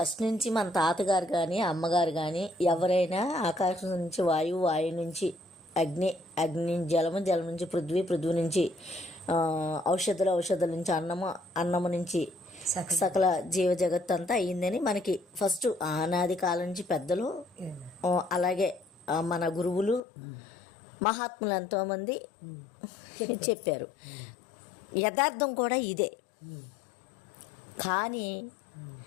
నుంచి మన తాతగారు కానీ అమ్మగారు కానీ ఎవరైనా ఆకాశం నుంచి వాయువు, వాయువు నుంచి అగ్ని, అగ్ని నుంచి జలము, జలం నుంచి పృథ్వీ, పృథ్వీ నుంచి ఔషధాలు, ఔషధాల నుంచి అన్నము, అన్నము నుంచి సకల జీవ జగత్తు అంతా అయ్యిందని మనకి ఫస్ట్ ఆనాది కాలం నుంచి పెద్దలు, అలాగే మన గురువులు, మహాత్ములు ఎంతోమంది చెప్పారు. యథార్థం కూడా ఇదే. కానీ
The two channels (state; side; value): drops out; right; at 20.0 s